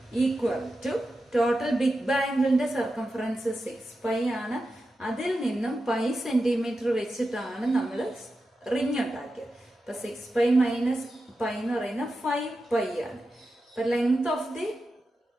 equal to total big ബാംഗിളിന്റെ സർക്കംഫറൻസ് 6π ആണ്. അതിൽ നിന്നും π സെന്റിമീറ്റർ വെച്ചിട്ടാണ് നമ്മൾ റിങ് ഉണ്ടാക്കിയത്. അപ്പൊ 6π മൈനസ് π എന്ന് പറയുന്ന 5π ആണ്. അപ്പൊ ലെങ്ത് ഓഫ് ദി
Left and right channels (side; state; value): both; normal; correlation 0.91